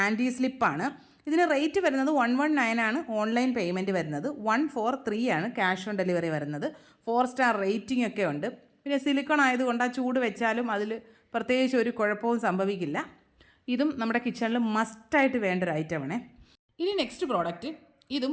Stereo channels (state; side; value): identical; both; correlation 1.00